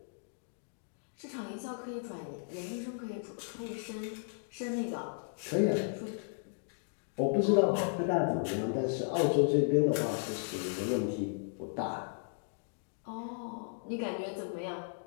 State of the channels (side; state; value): right; silent; digital silence